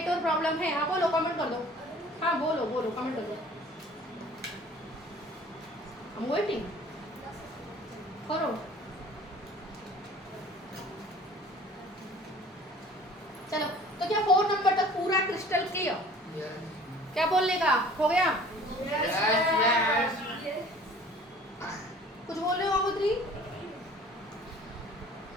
प्रॉब्लम है? हाँ बोलो, कमेंट कर दो। हाँ बोलो कमेंट कर दो। I'm waiting. करो। चलो, तो क्या 4 नंबर तक पूरा क्रिस्टल क्लियर? क्या बोलने का हो गया? कुछ बोल रहे हो गंगोत्री?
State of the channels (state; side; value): normal; both; correlation 0.49